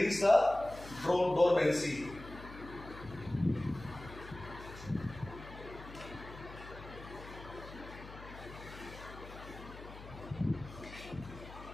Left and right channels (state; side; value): noise; left; hum, 15 dB below the sound